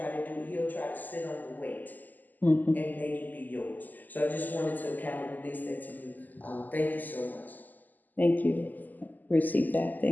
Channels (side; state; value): right; late; 0.084 ms